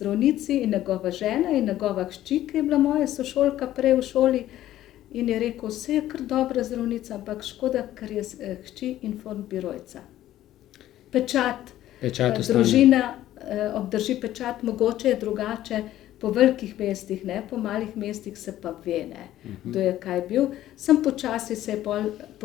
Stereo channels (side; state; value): right; quieter; 13.4 dB